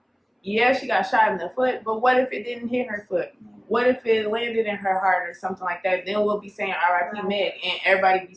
yeah, she got shot in the foot, but what if it didn't hit her foot? What if it landed in her heart or something like that? Then we'll be saying R.I.P. Meg, and everybody be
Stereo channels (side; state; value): both; identical; correlation 1.00